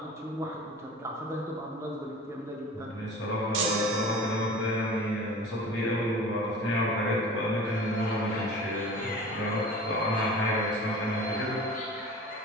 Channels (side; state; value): both; normal; correlation 0.39